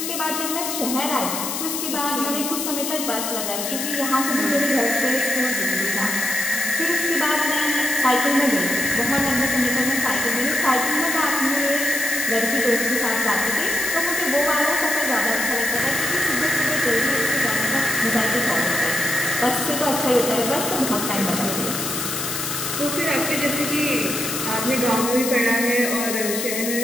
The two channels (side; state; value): left; noise; hiss, 3 dB below the sound